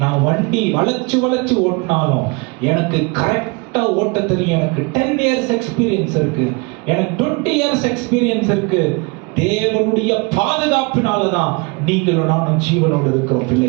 நான் வண்டி வளைச்சு ஓட்டினாலும் எனக்கு கரெக்டா ஓட்ட தெரியும். எனக்கு 10 years எக்ஸ்பீரியன்ஸ் இருக்கு, எனக்கு 20 years எக்ஸ்பீரியன்ஸ் இருக்கு. தேவனுடைய பாதுகாப்பினாலதான் நீங்களும் நானும் ஜீவனோடு இருக்கிறோம்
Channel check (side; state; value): left; quieter; 29.0 dB